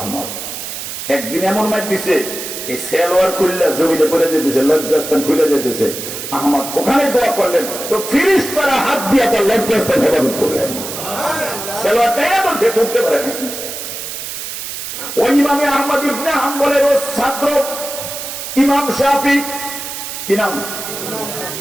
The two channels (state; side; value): noise; right; hiss, 7 dB below the sound